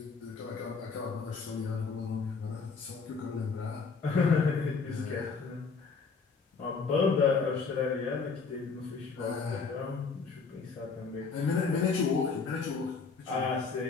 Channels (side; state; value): right; quieter; 4.9 dB